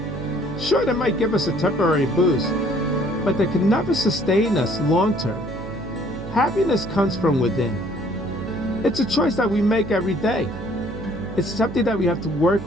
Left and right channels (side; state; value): right; noise; hum, 11 dB below the sound